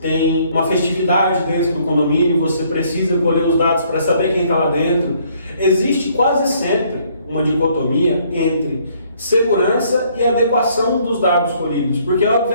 uma festividade dentro do condomínio, você precisa colher os dados para saber quem está lá dentro. Existe quase sempre uma dicotomia entre segurança e adequação dos dados colhidos, porque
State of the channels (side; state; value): both; inverted; correlation -0.65